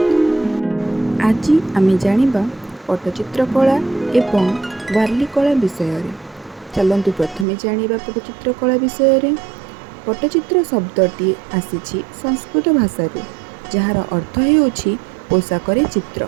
आज आमे जानिबा पट्टचित्र कला एवं वार्ली कला विषय। चलतु प्रथमे जानिबा पट्टचित्र कला विषय। पट्टचित्र शब्दटी आसीछि संस्कृत भाषारू जार अर्थ हेउछि पोशाकरे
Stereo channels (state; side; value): drops out; left; at 7.5 s